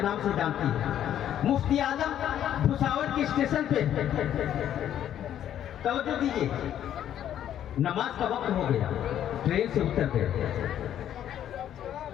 نام سے جانتی ہے۔ مفتی اعظم بھساور کے اسٹیشن پہ، توجہ دیجیے، نماز کا وقت ہو گیا، ٹرین سے اتر گئے،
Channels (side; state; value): right; quieter; 10.6 dB